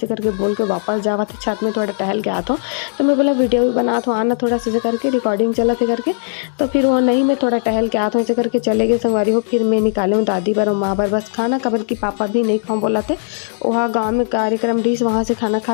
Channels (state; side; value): silent; right; digital silence